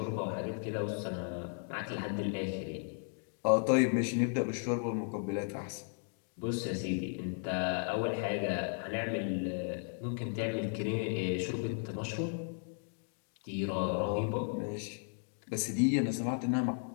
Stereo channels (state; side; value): silent; right; 54 dB below the other